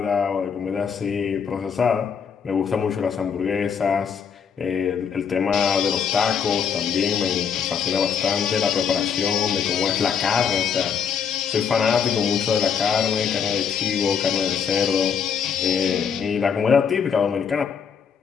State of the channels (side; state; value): right; quieter; 7.0 dB